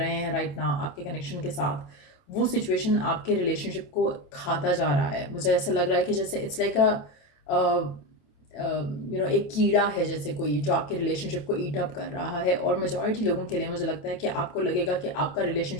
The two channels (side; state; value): right; late; 27 ms